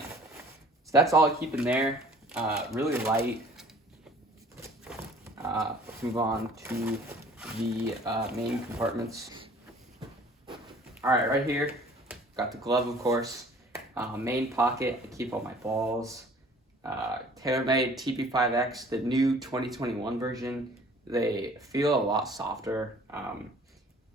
So that's all I keep in there. Really light. Let's move on to the main compartments. All right here, got the glove, of course. Main pocket, I keep all my balls. TaylorMade TP5X, the new 2021 version. They feel a lot softer.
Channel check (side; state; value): both; normal; correlation 0.52